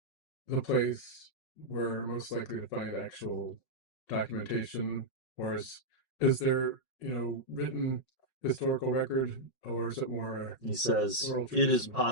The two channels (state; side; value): late; right; 5.4 ms